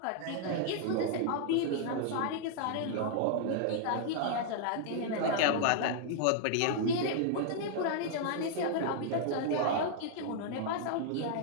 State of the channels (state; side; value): different; both; correlation -0.01